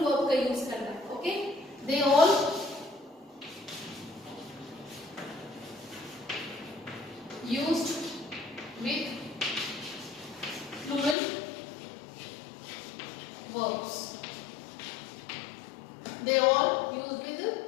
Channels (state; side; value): drops out; right; at 11.2 s